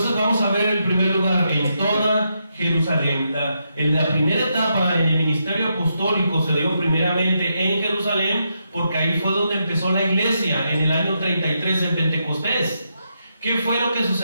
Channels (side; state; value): both; inverted; correlation -0.82